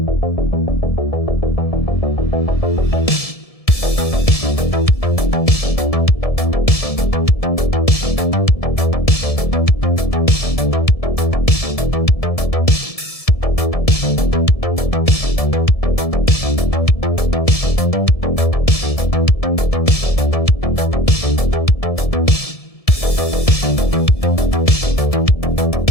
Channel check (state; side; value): late; right; 1.7 ms